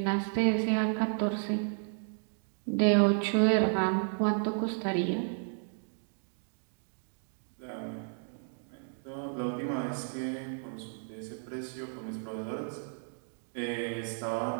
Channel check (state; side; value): silent; left; 56 dB below the other